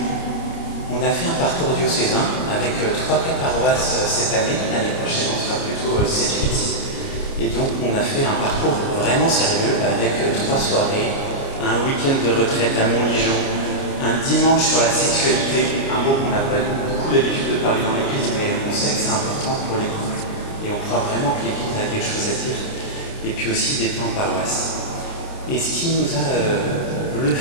on a fait un parcours diocésain avec 3-4 paroisses cette année. L'année prochaine, on sera plutôt 7-8. Et donc, on a fait un parcours vraiment sérieux avec 3 soirées, un week-end de retraite à Montligeon, un dimanche sur la sexualité, un mot qu'on n'a pas beaucoup l'habitude de parler dans l'église, mais on sait que c'est important pour les couples. Et on croit vraiment que l'église a quelque chose à dire. Et puis aussi des temps en paroisse. Et ce qui nous a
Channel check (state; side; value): late; right; 29 ms